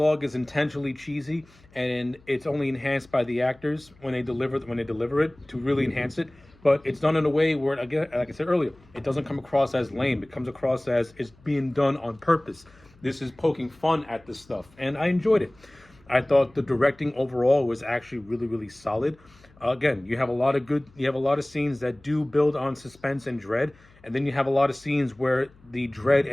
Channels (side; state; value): left; noise; hum, 28 dB below the sound